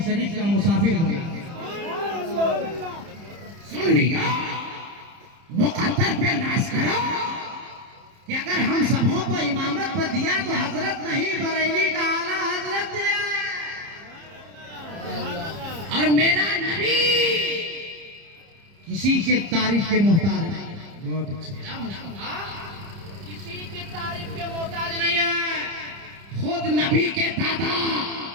शरीफ का मुसाफिर बना। सुन लिया, मुकद्दर पे नाज करो कि अगर हम सबों को इमामत पर दिया तो हजरत नहीं बरेली का आला हजरत दिया। और मेरा नबी किसी के तारीफ के मोहताज नहीं। बहुत अच्छा। किसी की तारीफ के मोहताज नहीं है। खुद नबी के दादा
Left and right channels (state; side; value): late; left; 30 ms